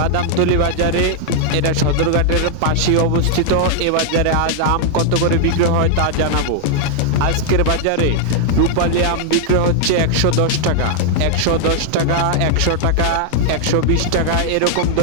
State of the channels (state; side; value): different; both; correlation -0.01